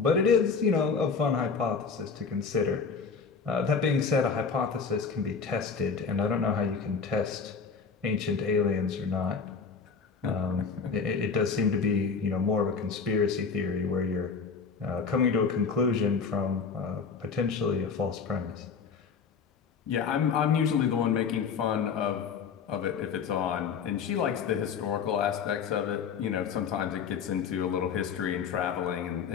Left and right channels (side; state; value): right; quieter; 5.7 dB